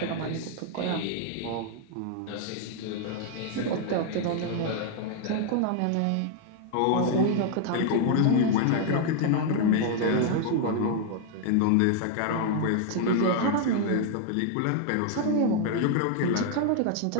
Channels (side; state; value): both; different; correlation 0.00